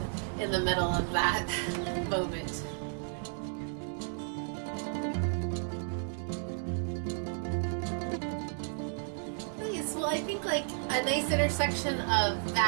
in the middle of that moment. Well, I think like a nice intersection of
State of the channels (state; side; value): silent; left; 56 dB below the other